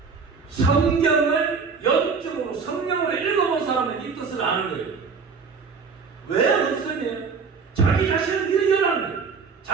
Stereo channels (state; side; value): quieter; left; 5.2 dB